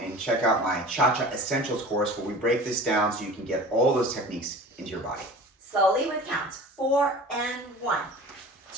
and check out my Cha-Cha Essentials course where we break this down so you can get all those techniques into your body. Slowly with counts, 4 and 1,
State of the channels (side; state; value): both; normal; correlation 0.40